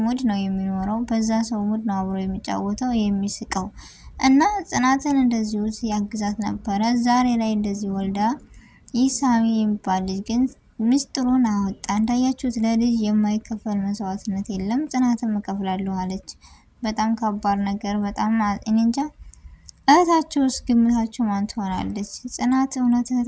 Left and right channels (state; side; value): identical; both; correlation 1.00